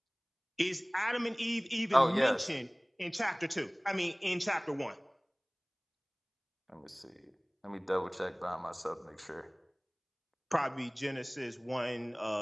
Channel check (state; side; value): identical; both; correlation 1.00